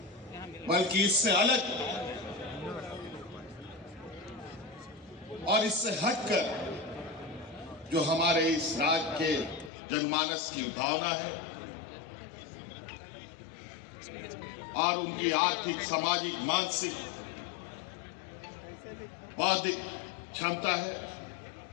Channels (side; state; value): right; drops out; at 9.7 s